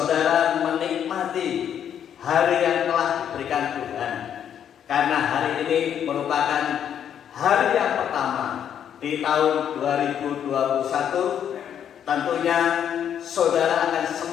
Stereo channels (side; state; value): right; quieter; 9.1 dB